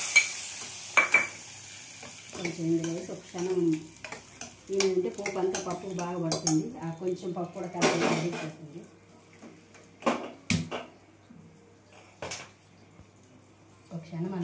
కొంచెం ఇందులో వేసి ఒక క్షణం ఏంటంటే పోపు అంతా పప్పు బాగా పడుతుంది. ఆ కొంచెం పప్పు కూడా కలిపి అడిగిపోతుంది. ఒక క్షణం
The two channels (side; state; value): both; identical; correlation 1.00